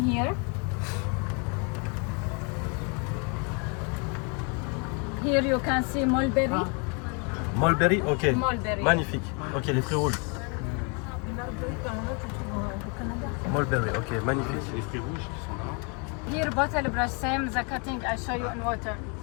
Here you can see mulberry. Mulberry, ok. Mulberry. Magnifique. Ok, les fruits rouges. Mulberry, ok, magnifique. C'est les fruits rouges qui sont là. Here bottle brush, same the cutting I show you in water.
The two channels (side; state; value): right; quieter; 35.0 dB